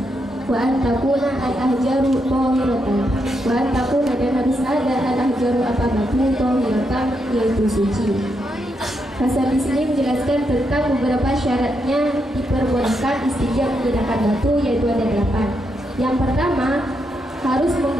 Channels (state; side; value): normal; both; correlation 0.81